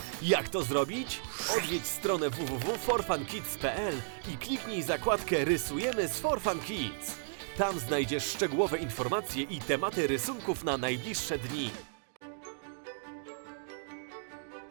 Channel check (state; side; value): silent; left; digital silence